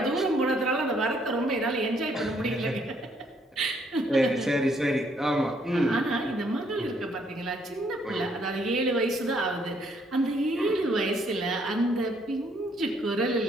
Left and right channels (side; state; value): both; normal; correlation 0.68